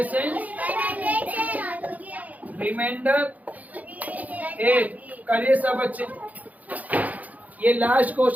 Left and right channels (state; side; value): late; left; 0.076 ms